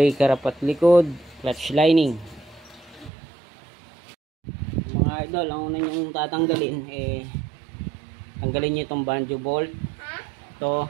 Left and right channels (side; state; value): left; drops out; at 3.1 s